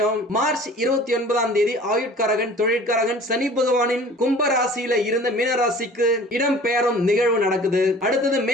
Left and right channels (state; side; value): normal; both; correlation 0.46